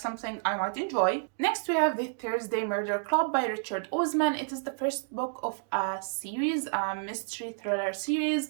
I might enjoy. Next, we have The Thursday Murder Club by Richard Osman. It is the first book of a series, a mystery thriller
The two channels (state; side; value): silent; left; digital silence